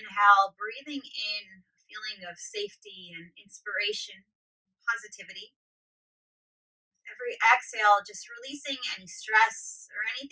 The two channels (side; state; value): both; identical; correlation 1.00